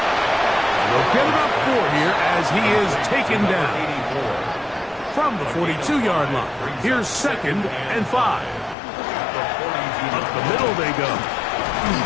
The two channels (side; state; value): right; drops out; at 8.8 s